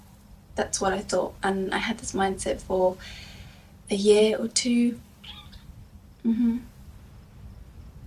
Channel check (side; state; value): both; identical; correlation 1.00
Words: That's what I thought, and I had this mindset for a year or two. And